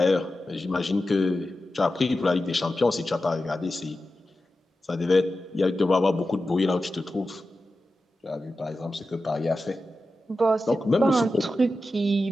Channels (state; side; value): normal; both; correlation 0.92